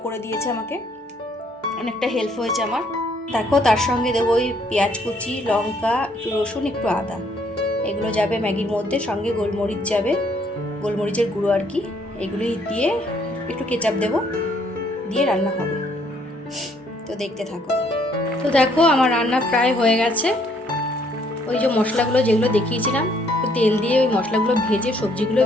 করে দিয়েছে আমাকে, অনেকটা হেল্প হয়েছে আমার। দেখো তার সঙ্গে দেবো ওই পেঁয়াজ কুচি, লঙ্কা, একটু রসুন, একটু আদা, এগুলো যাবে ম্যাগির মধ্যে, সঙ্গে গোলমরিচ যাবে। গোলমরিচের গুঁড়ো আর কি, এগুলোই দিয়ে একটু কেচাপ দেবো, দিয়ে রান্না হবে। তো দেখতে থাকো। তো দেখো আমার রান্না প্রায় হয়ে গেছে। ওই যে মশলাগুলো যেগুলো দেখিয়েছিলাম, তো তেল দিয়ে ওই মশলাগুলো ভেজে, সবজিগুলো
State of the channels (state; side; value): normal; both; correlation 0.66